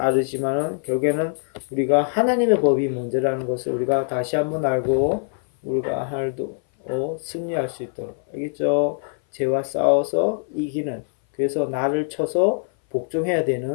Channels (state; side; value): silent; right; 59 dB below the other